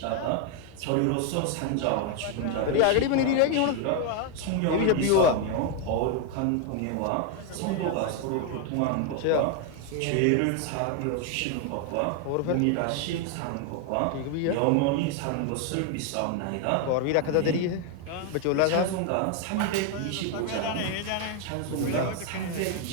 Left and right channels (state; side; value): different; both; correlation 0.01